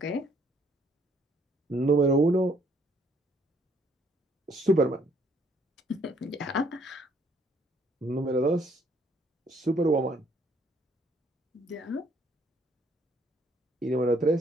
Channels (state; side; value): normal; both; correlation 0.65